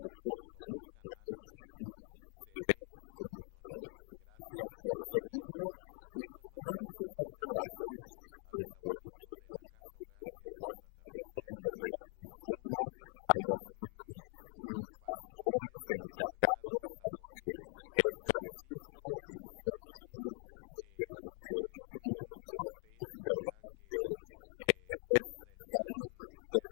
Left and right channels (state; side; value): quieter; right; 39.4 dB